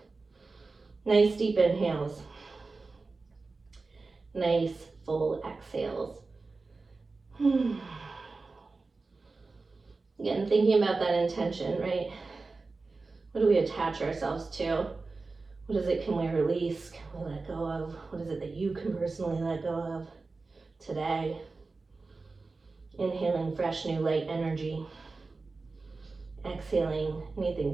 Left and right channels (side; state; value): left; quieter; 3.8 dB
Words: Nice deep inhales. Nice full exhales. Again, thinking about that intention, right? What do we attach ourselves to? What is it can we release? Can we let go of? What is it that you can personally let go of today? Inhaling fresh, new, light energy. Exhaling anything